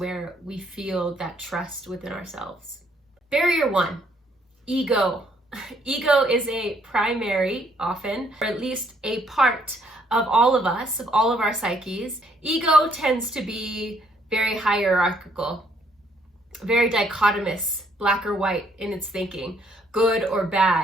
we feel that trust within ourselves. Barrier one, ego. Ego is a primary, often, or at least a part of all of us, of all of our psyches. Ego tends to be very hierarchical, very dichotomous, black or white in its thinking, good or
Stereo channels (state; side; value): normal; both; correlation 0.68